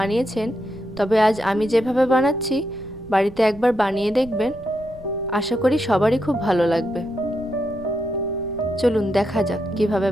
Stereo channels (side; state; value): right; noise; rumble, 19 dB below the sound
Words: তবে আজ আমি যেভাবে বানাচ্ছি বাড়িতে একবার বানিয়ে দেখবেন। আশা করি সবারই খুব ভালো লাগবে। চলুন দেখা যাক কিভাবে